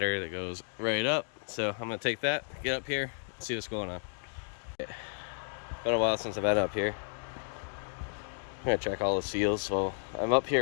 that goes right up, so I'm gonna take that, get up here, and see what's going on. Been a while since I've been up here. I'm gonna check all the seals, so I'm up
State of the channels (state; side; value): silent; right; digital silence